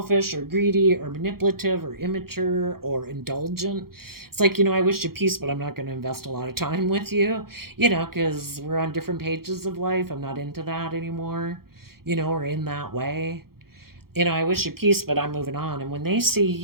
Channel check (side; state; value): left; late; 0.94 ms